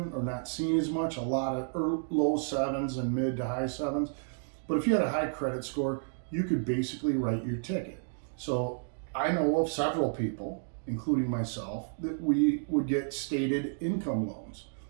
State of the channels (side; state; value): left; silent; digital silence